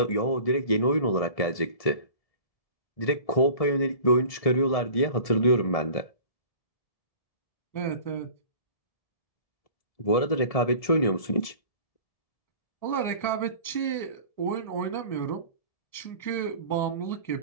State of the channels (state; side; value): late; right; 1.7 ms